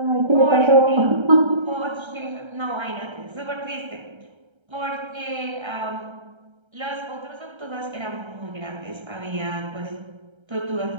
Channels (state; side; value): late; left; 1.3 ms